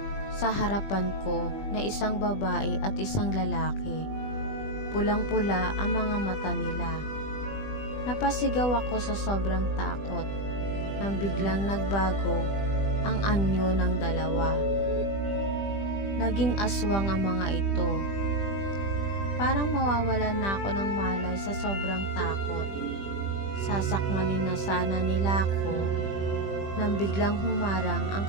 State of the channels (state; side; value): late; right; 20 ms